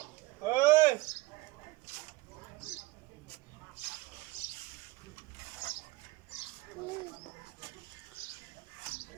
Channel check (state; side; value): quieter; left; 20.5 dB